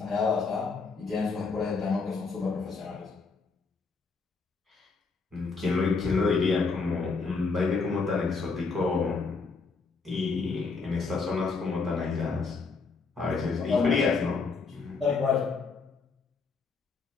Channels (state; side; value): quieter; right; 4.5 dB